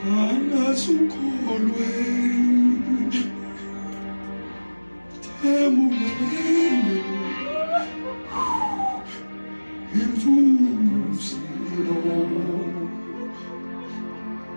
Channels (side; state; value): both; inverted; correlation -1.00